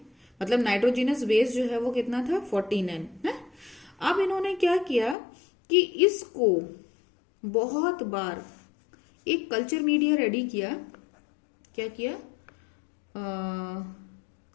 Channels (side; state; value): right; drops out; at 5.2 s